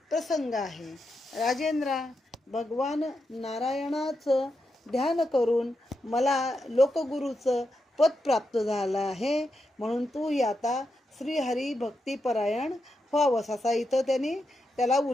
प्रसंग आहे. राजेंद्रा, भगवान नारायणाचं ध्यान करून मला लोकगुरूचं पद प्राप्त झालं आहे, म्हणून तूही आता श्रीहरी भक्तिपरायण व्हावंस, असा इथं त्यांनी त्याला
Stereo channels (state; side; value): normal; both; correlation 0.85